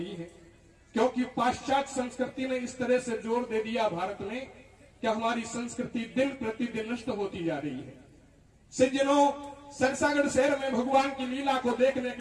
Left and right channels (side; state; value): both; identical; correlation 1.00